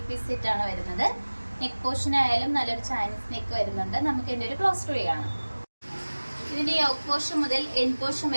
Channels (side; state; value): both; inverted; correlation -1.00